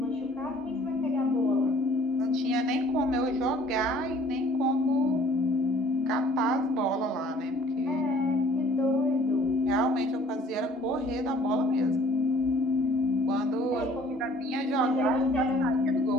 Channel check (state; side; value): normal; both; correlation 0.55